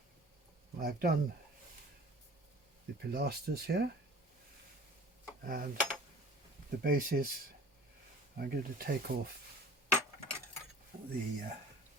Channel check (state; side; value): normal; both; correlation 0.45